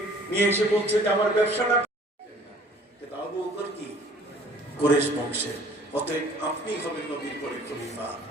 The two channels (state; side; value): normal; both; correlation 0.53